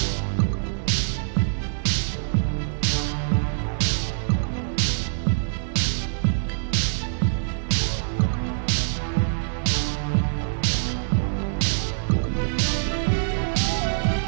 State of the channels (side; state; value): left; silent; digital silence